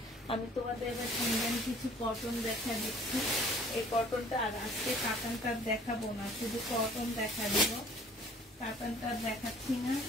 আমি তোমাদের এবার ইন্ডিয়ান কিছু কটন দেখা দিচ্ছি। এই কটনটা, আর আজকে কাতানটা দেখাবো না, শুধু কটন দেখা দিব। কাতানটা দেখাচ্ছি না,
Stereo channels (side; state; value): both; normal; correlation 0.53